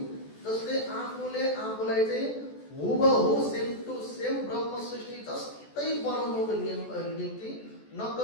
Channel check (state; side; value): late; right; 14 ms